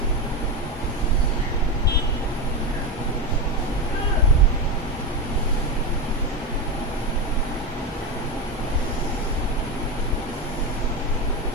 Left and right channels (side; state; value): both; normal; correlation 0.15